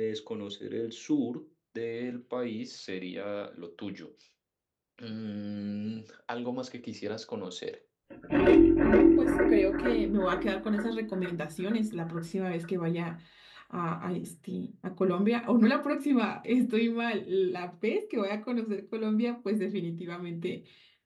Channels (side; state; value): both; identical; correlation 1.00